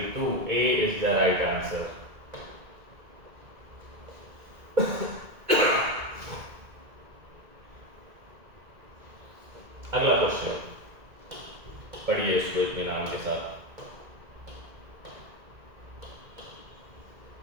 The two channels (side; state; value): left; late; 2.0 ms